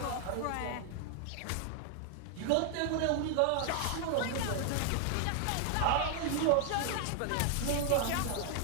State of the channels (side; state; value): both; different; correlation 0.00